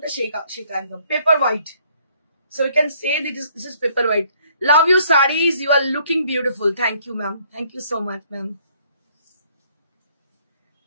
সেটা একদম paper white. So we can say that this is paper white. Love your sarees, you are looking beautiful. Thank you ma'am, thank you so much ma'am.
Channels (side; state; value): both; inverted; correlation -0.64